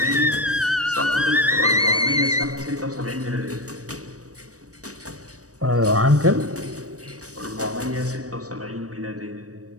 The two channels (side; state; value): left; late; 0.66 ms